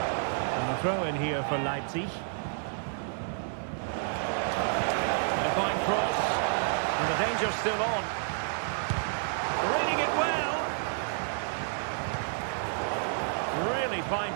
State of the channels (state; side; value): silent; left; 58 dB below the other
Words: And the throw in here for Leipzig. And a fine cross. And the danger's still on. Reading it well. Really fine